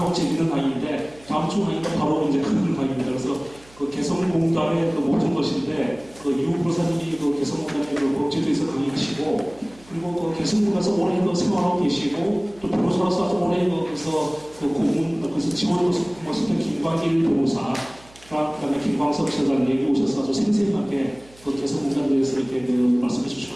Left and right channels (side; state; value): right; noise; hum, 25 dB below the sound